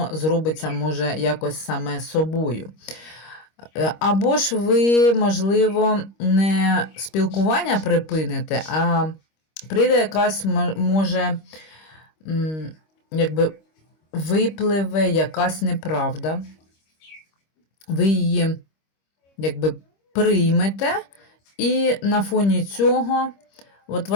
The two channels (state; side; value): late; right; 25 ms